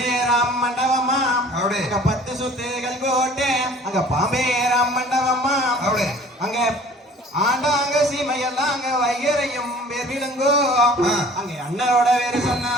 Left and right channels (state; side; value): normal; both; correlation 0.49